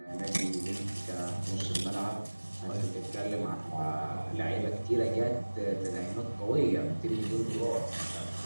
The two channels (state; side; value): inverted; both; correlation -1.00